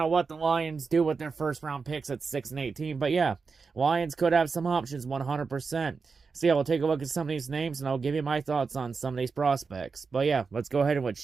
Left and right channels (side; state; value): left; quieter; 4.9 dB